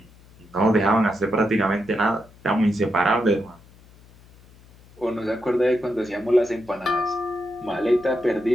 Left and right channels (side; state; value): left; noise; hum, 25 dB below the sound